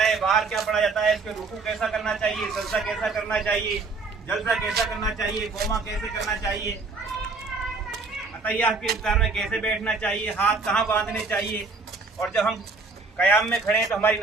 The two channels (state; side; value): quieter; left; 4.0 dB